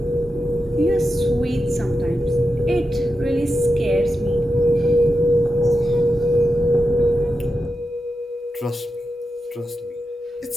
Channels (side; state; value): both; normal; correlation 0.89